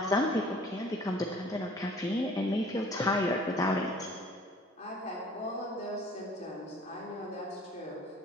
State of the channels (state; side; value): normal; both; correlation 0.52